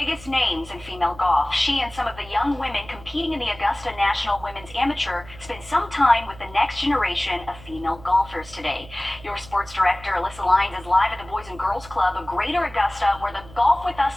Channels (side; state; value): right; noise; hum, 19 dB below the sound